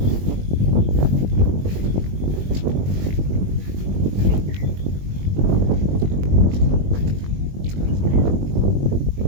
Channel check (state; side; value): late; left; 21 ms